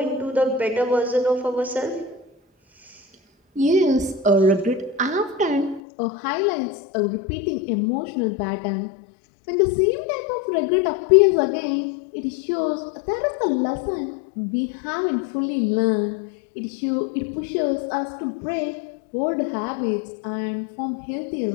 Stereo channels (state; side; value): drops out; right; at 5.8 s